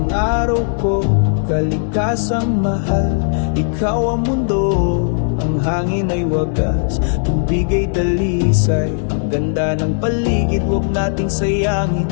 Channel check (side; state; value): right; silent; digital silence